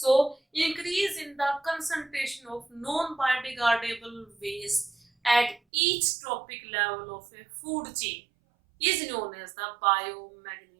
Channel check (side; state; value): left; drops out; at 5.6 s